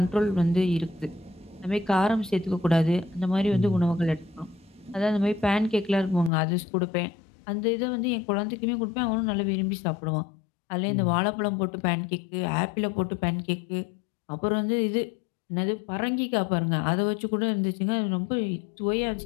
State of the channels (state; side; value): drops out; right; at 6.3 s